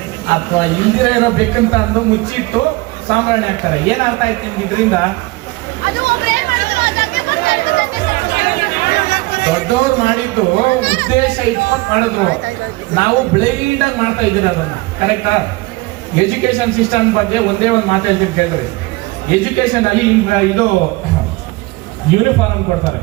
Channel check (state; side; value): quieter; left; 22.4 dB